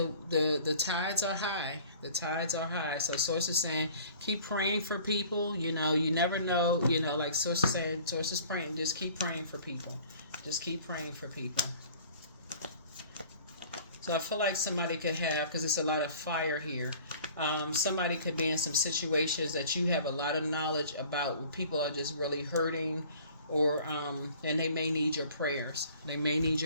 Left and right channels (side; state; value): both; inverted; correlation -0.50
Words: tides are high. The tides are high. So Source is saying, keep praying for people. You never know. Like Source is saying, Source is praying. Just keep praying for people. Just keep praying for people. So I feel like somebody could have, because it's a lot of fire here. Somebody could be in some situations that you have a lot of knowledge about where people are just really hurting, or and they may need your prayers. They may need